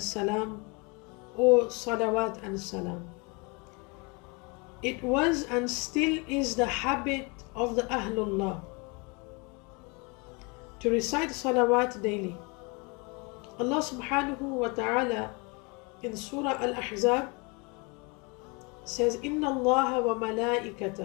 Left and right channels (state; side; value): quieter; right; 29.5 dB